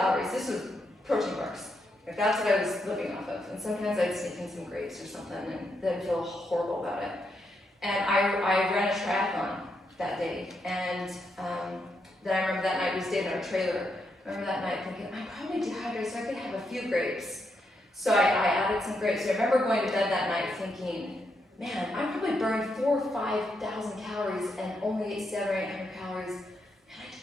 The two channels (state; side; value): normal; both; correlation 0.81